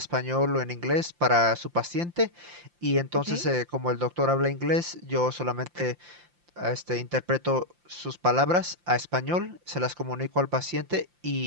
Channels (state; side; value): late; left; 5.8 ms